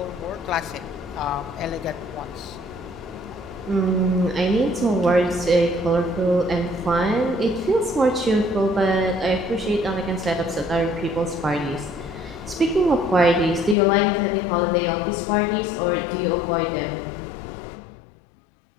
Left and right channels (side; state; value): right; drops out; at 13.8 s